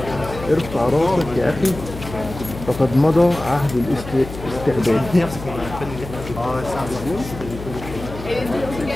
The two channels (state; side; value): noise; left; hum, 12 dB below the sound